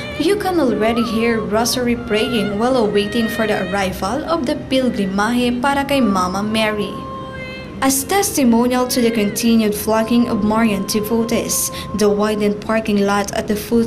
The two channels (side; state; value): both; identical; correlation 1.00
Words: you can already hear rosary praying while awaiting for the arrival of the Pilgrimahe para kay Mama Mary. As testimonial to the continued flocking of Marian devotees, the widened parking lot at the